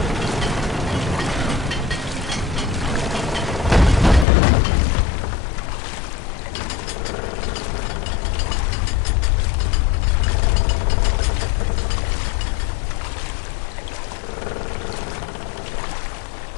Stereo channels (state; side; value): drops out; right; at 4.2 s